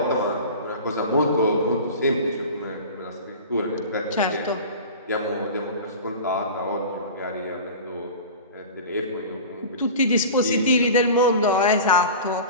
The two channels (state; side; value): inverted; both; correlation -0.34